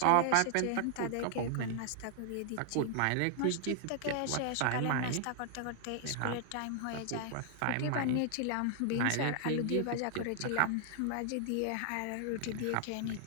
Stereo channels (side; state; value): both; different; correlation 0.00